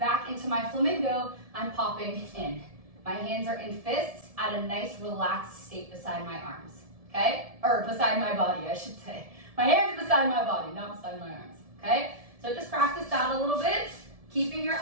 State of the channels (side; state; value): left; late; 1.7 ms